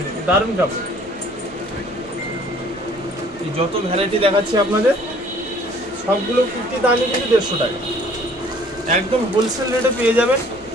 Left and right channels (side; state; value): both; normal; correlation 0.55